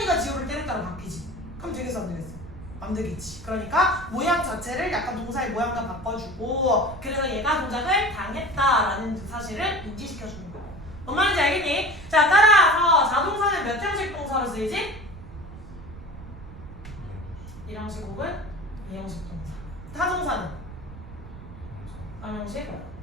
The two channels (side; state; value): right; noise; rumble, 14 dB below the sound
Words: 지호를 때렸다로 바뀌지. 그럼 되겠어 안 되겠어? 안 되겠지. 그러니까 모양 자체를 약간 동사의 모양과 바꿔주고 그래서 얘가 동작을 당했다라는 사실을 인지시켜주는 거야. 뭔 말인지 알겠니? 자, 따라서 자동사는 몇 형식 동사로 쓰이지? 1형식 혹은 2형식 동사. 타동사는 3형식,